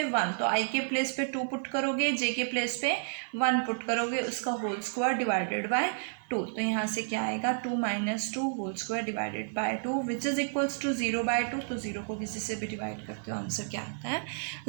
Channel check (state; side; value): silent; left; 57 dB below the other